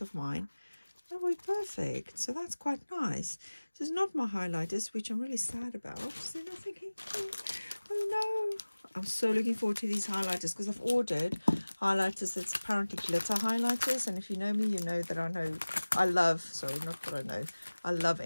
of mine. That will be perfect. So that's quite nice. So it's not my highlighters, which I'm really sad about. So then I'm thinking, oh no. I'm so looking forward to these highlighters because I've ordered highlighters that's apparently glitter highlighters. And if you know me, you know that I love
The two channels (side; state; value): both; inverted; correlation -1.00